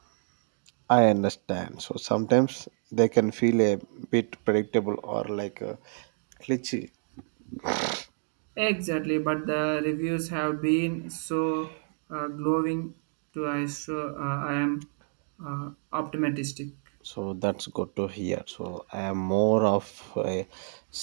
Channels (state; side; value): silent; left; 58 dB below the other